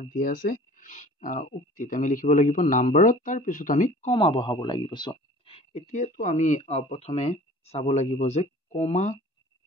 দিয়া আছে উক্তিত আমি লিখিব লাগিব নাম্বাৰত, তাৰপিছত আমি কমা বহাব লাগিব। চোৱা, এতিয়াতো আমি প্ৰথমে চাব লাগিব যে কমা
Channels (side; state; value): both; normal; correlation 0.47